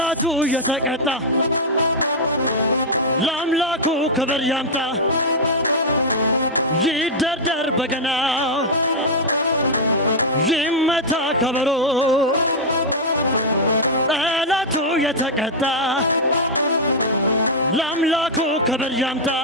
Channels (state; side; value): normal; both; correlation -0.03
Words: የተቀጣ ለአምላኩ ክብር ያምጣ ይደርደር በገናው ይመታ ከበሮ ጠላቱ የተቀጣ ለአምላኩ ክብር ያምጣ